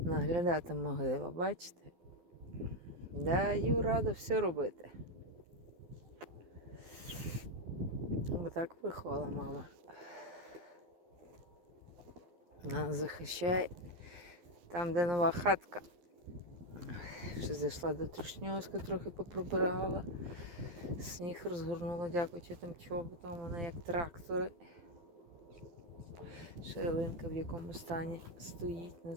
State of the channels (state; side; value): late; left; 12 ms